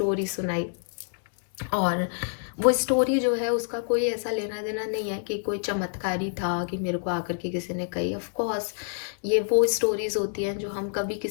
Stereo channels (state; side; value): silent; right; 59 dB below the other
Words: सुनाई, और वो स्टोरी जो है उसका कोई ऐसा लेना देना नहीं है कि कोई चमत्कारी था कि मेरे को आकर के किसी ने कही। ऑफ कोर्स ये वो स्टोरीज होती हैं जो हम कभी